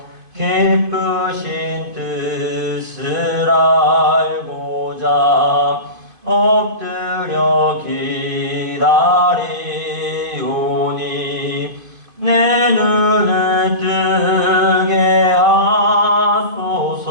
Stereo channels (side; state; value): left; late; 2.5 ms